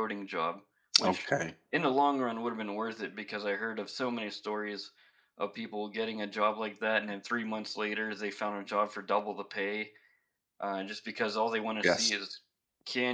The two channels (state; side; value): identical; both; correlation 1.00